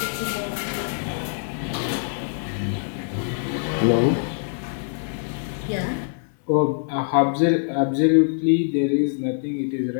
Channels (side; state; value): right; silent; digital silence